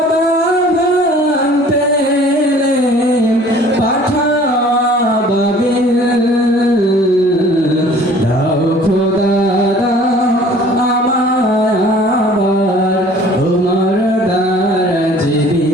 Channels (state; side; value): normal; both; correlation 0.51